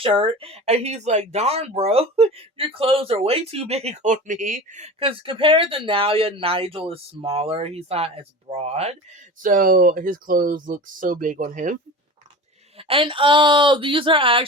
and he's like, "Darn, bro, your clothes are way too big on me." Because compared to Naoya, Nigel is smaller. He's not as broad. So his clothes look so big on him. And these are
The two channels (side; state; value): both; normal; correlation 0.33